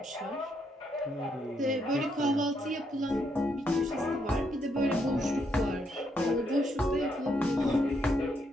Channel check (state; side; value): normal; both; correlation 0.76